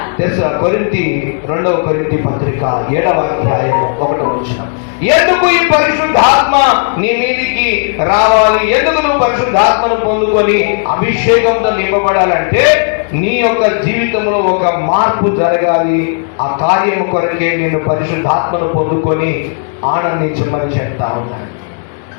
కొరింథీ 2వ కొరింథీ పత్రిక 7వ అధ్యాయం 1వ వచనం. ఎందుకు ఈ పరిశుద్ధాత్మ నీ మీదికి రావాలి? ఎందుకు నువ్వు పరిశుద్ధాత్మను పొందుకొని అభిషేకంతో నింపబడాలంటే నీ యొక్క జీవితంలో ఒక మార్పు జరగాలి. ఆ కార్యం కొరకే నేను పరిశుద్ధాత్మను పొందుకొని ఆనందించమని చెప్తా ఉన్నాను.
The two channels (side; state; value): right; silent; digital silence